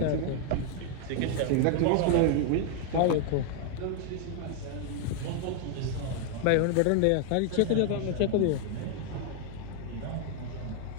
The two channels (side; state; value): both; different; correlation 0.00